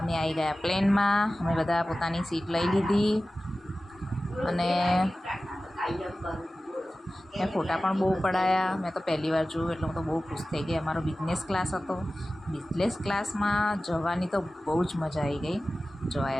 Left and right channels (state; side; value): normal; both; correlation 0.96